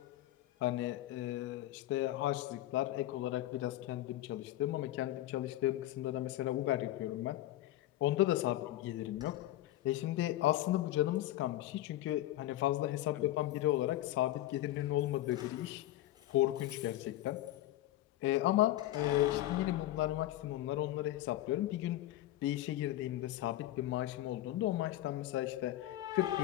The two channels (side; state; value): right; quieter; 14.8 dB